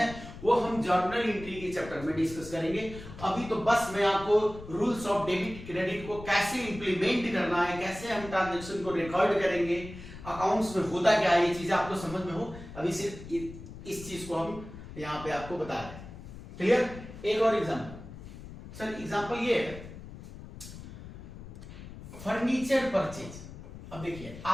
वो हम जर्नल एंट्री के चैप्टर में डिस्कस करेंगे। अभी तो बस मैं आपको रूल्स ऑफ डेबिट क्रेडिट को कैसे इंप्लीमेंट करना है, कैसे हम ट्रांजैक्शन को रिकॉर्ड करेंगे, अकाउंट्स में होता क्या है, ये चीजें आपको समझ में हो, अभी सिर्फ इस चीज को हम यहां पे आपको बता रहे हैं। क्लियर? एक और एग्जांपल सर, एग्जांपल ये है फर्नीचर परचेज। अब देखिए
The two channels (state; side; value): noise; left; rumble, 14 dB below the sound